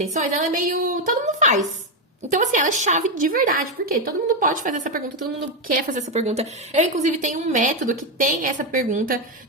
ela é meio... Todo mundo faz. Então, assim, ela é chave de verdade. Por quê? Todo mundo pode fazer essa pergunta, todo mundo quer fazer essa pergunta. Eu, inclusive, tenho um método que tem essa pergunta,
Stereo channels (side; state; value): both; normal; correlation 0.06